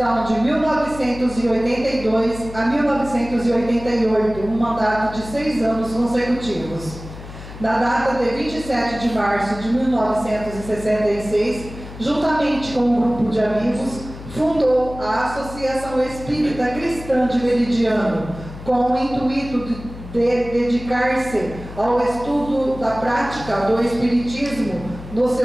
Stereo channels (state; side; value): noise; left; hum, 13 dB below the sound